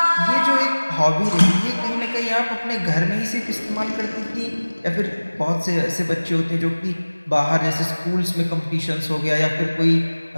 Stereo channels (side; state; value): both; inverted; correlation -1.00